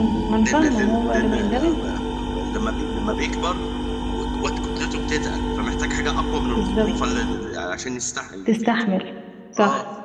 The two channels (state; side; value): identical; both; correlation 1.00